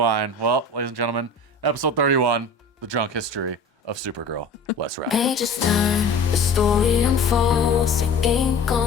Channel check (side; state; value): right; quieter; 3.1 dB